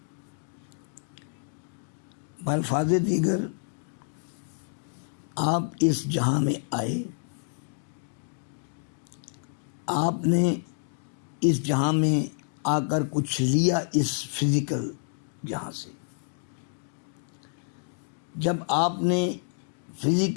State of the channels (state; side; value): silent; right; 59 dB below the other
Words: بالفاظ دیگر، آپ اس جہاں میں آئے، آپ نے اس جہاں میں آ کر کچھ لیا اس فزیکل جہاں سے۔ جب آپ نے